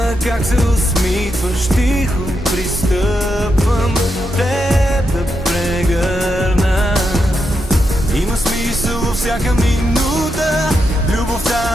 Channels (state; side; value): normal; both; correlation 0.84